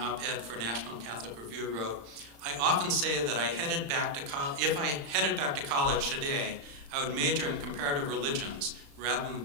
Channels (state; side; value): late; left; 35 ms